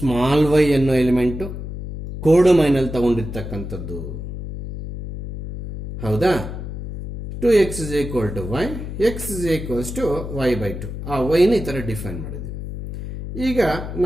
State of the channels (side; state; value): left; noise; hum, 8 dB below the sound